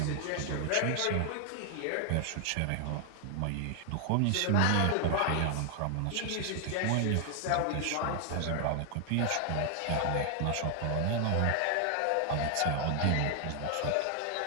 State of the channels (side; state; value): both; different; correlation 0.00